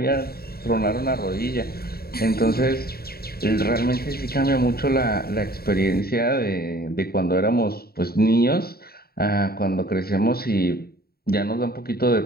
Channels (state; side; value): late; right; 0.45 ms